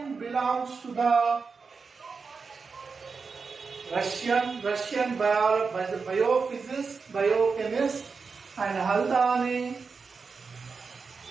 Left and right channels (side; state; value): left; quieter; 4.9 dB